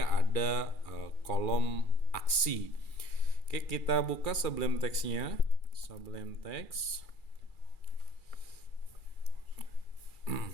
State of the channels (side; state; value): right; late; 2.3 ms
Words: ada kolom aksi. Oke, kita buka Sublime Text-nya. Sublime Text.